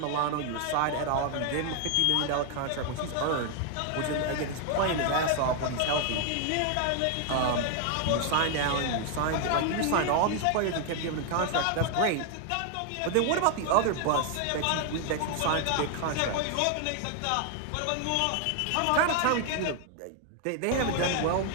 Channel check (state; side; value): different; both; correlation 0.00